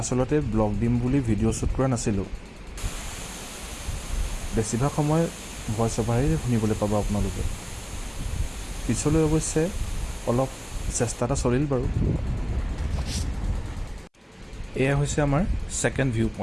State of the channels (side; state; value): both; identical; correlation 1.00